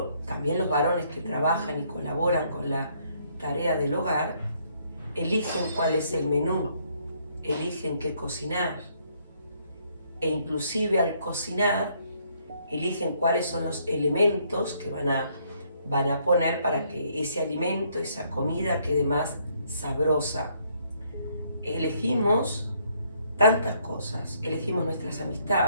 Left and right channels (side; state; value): both; inverted; correlation -0.69